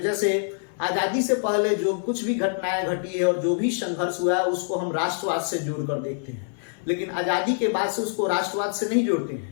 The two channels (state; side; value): silent; right; digital silence